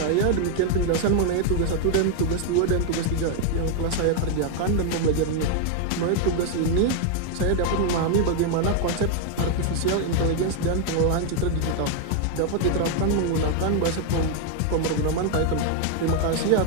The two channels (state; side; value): different; both; correlation 0.00